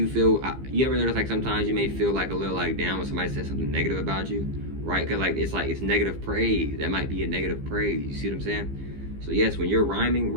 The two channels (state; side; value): late; left; 15 ms